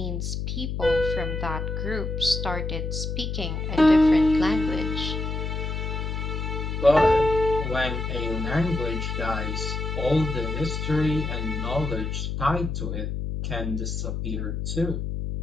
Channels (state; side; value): noise; left; hum, 3 dB below the sound